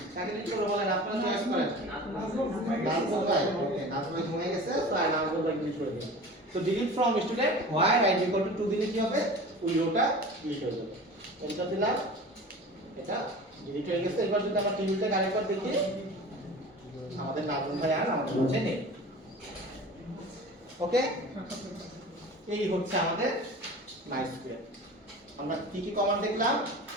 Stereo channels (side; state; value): both; normal; correlation 0.37